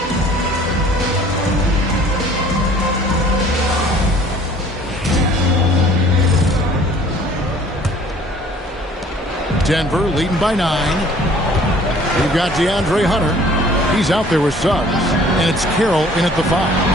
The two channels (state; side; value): normal; both; correlation 0.53